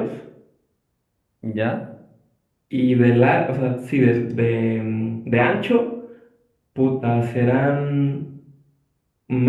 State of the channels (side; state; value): both; identical; correlation 1.00